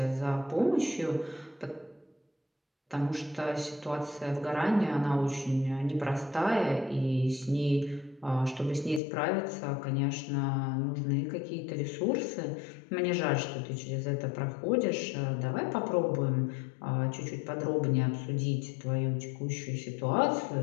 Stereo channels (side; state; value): right; drops out; at 9.0 s